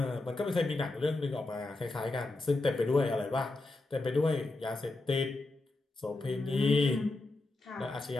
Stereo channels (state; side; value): quieter; right; 3.0 dB